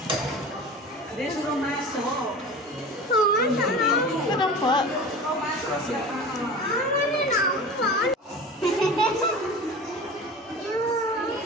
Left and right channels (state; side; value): normal; both; correlation 0.35